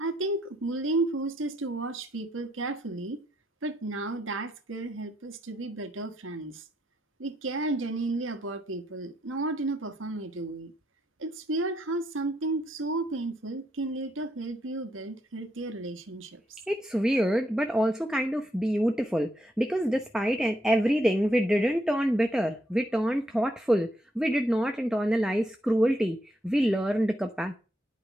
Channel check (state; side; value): normal; both; correlation 0.77